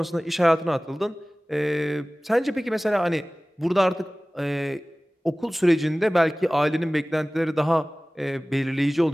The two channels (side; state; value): both; normal; correlation 0.98